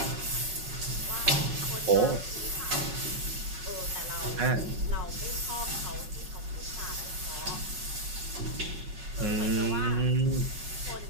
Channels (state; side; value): late; left; 5.4 ms